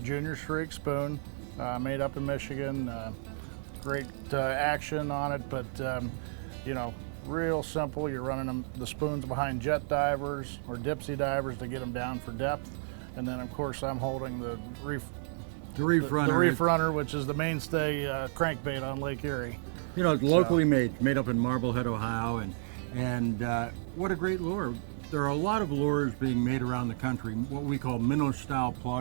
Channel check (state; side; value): silent; left; digital silence